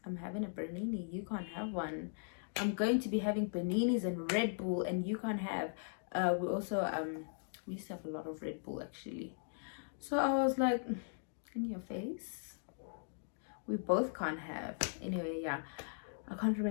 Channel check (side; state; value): right; silent; digital silence